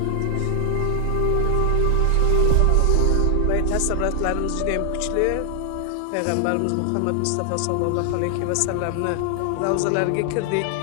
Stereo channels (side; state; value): both; different; correlation 0.00